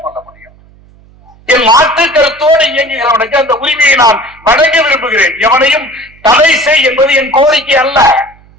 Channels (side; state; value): right; noise; hum, 28 dB below the sound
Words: முடியும். என் மாற்று கருத்தோடு இயங்குகிறவனுக்கு அந்த உரிமையை நான் வழங்க விரும்புகிறேன். எவனையும் தடை செய் என்பது என் கோரிக்கை அல்ல.